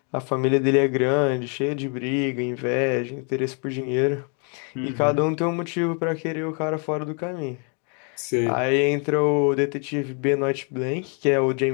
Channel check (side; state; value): right; quieter; 38.8 dB